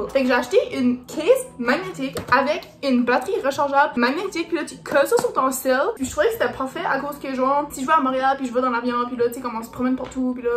Fait que j'ai acheté une case magnétique avec une batterie rechargeable magnétique puis là tu colles ça sur ton cell. Puis je trouvais que c'était parfait à cause que genre si je vais à Montréal puis je vais dans l'avion puis là tu sais comme on se promène partout puis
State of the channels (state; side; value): identical; both; correlation 1.00